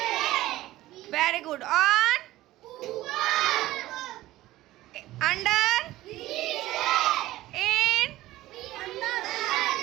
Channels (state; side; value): quieter; left; 16.3 dB